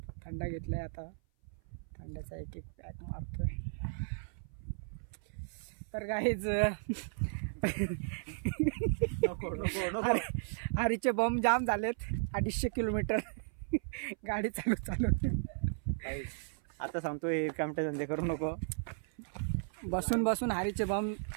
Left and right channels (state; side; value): silent; left; 54 dB below the other